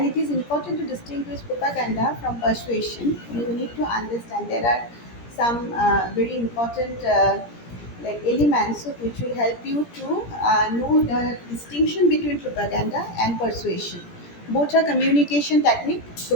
it is important to distinguish propaganda from persuasion. You need to understand there are some very important like elements which will help you to know the distinction between propaganda and persuasion. Both are communication technique.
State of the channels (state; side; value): late; right; 17 ms